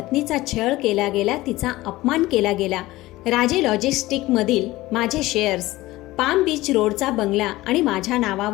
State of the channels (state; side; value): quieter; right; 18.2 dB